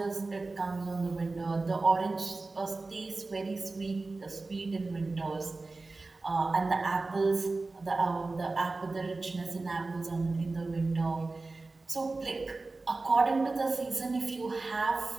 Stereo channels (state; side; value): quieter; left; 3.5 dB